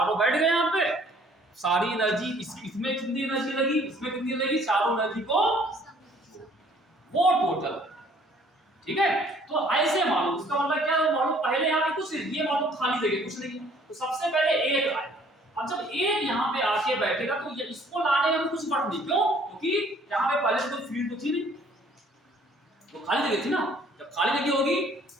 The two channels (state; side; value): normal; both; correlation 0.58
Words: बैठ गए यहाँ पे, सारी एनर्जी इसमें कितनी एनर्जी लगी, इसमें कितनी लगी, चारों एनर्जी को वो टोटल, ठीक है। तो ऐसे मानो, उसका मतलब क्या है, मानो पहले यहाँ पे कुछ नहीं, ये मानो खाली जगह कुछ नहीं, तो सबसे पहले एक आए। अब जब एक यहाँ पे आके बैठेगा तो ये इसको लाने में कुछ फर्क नहीं, क्यों, क्योंकि यहाँ पे पहले से कोई फील्ड तो थी नहीं, तो खाली जगह थी ना। जब खाली जगह होगी,